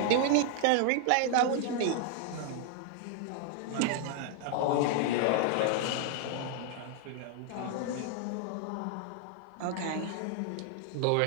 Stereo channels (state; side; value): different; both; correlation 0.00